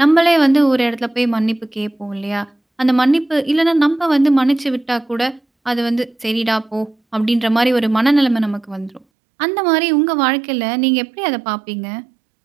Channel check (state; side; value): drops out; left; at 9.1 s